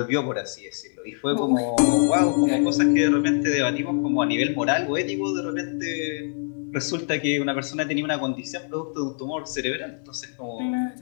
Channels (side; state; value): right; silent; 56 dB below the other